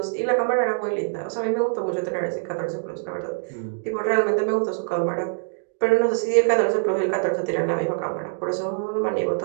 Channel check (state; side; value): silent; left; digital silence